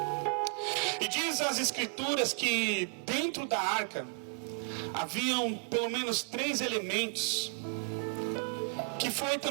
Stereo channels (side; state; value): left; quieter; 37.6 dB